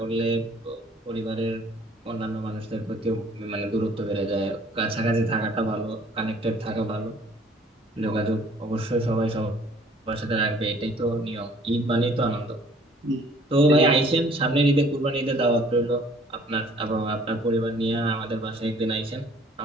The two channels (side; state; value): both; normal; correlation 0.56